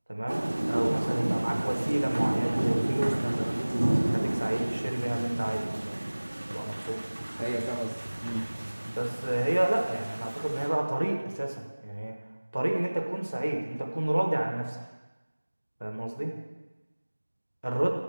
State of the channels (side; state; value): both; inverted; correlation -1.00